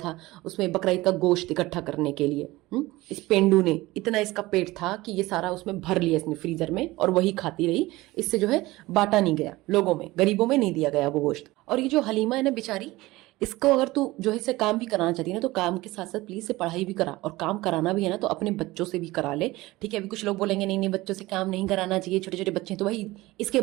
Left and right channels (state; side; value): quieter; left; 19.4 dB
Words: उसमें बकरीद का गोश्त इकट्ठा करने के लिए। इस पेंडू ने, इतना इसका पेट था कि ये सारा उसमें भर लिया इसने फ्रीजर में, और वही खाती रही। इससे जो है बांटा नहीं गया लोगों में, गरीबों में नहीं दिया गया वो गोश्त। और ये जो हलीमा है ना बेचारी, इसको अगर तू जो है इसे काम भी कराना चाहती है ना, तो काम के साथ साथ प्लीज से पढ़ाई भी करा, और काम कराना भी है ना तो अपने बच्चों से भी करा ले। ठीक है, अभी कुछ लोग बोलेंगे नहीं नहीं बच्चों से काम नहीं कराना चाहिए, छोटे छोटे बच्चे। तो भाई इसके